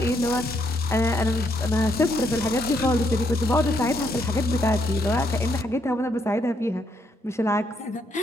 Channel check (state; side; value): normal; both; correlation 0.74